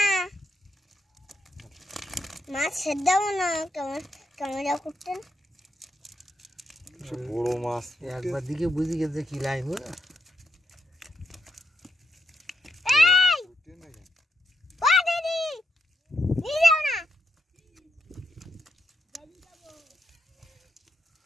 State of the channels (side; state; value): both; normal; correlation 0.82